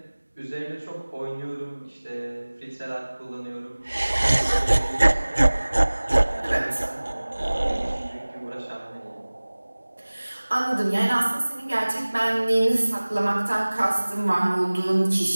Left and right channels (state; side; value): inverted; both; correlation -1.00